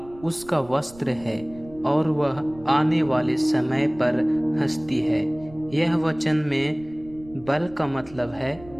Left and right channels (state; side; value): noise; right; rumble, 21 dB below the sound